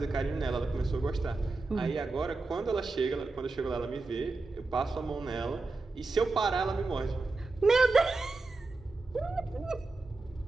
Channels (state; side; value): quieter; left; 3.5 dB